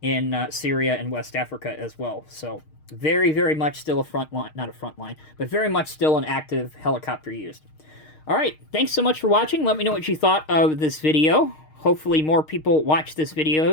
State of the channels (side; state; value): right; late; 6.5 ms